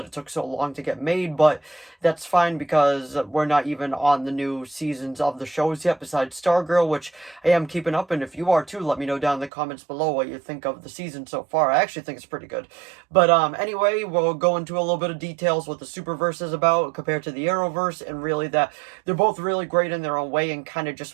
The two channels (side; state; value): left; drops out; at 9.5 s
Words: it took so long to get made, but that's fine because we're not even on the new seasons of the shows yet, besides Stargirl, which I am keeping up, and if you are too, let me know down in the comments below what you think of the season so far. I actually think it's pretty good. But anyway, we'll go into a little bit of details what the Superverse is about compared to the Arrowverse, and really that they're both really great in their own way, and kind of just